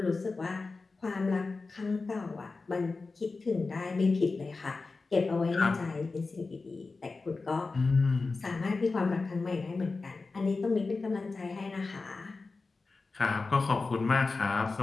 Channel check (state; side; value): quieter; right; 3.9 dB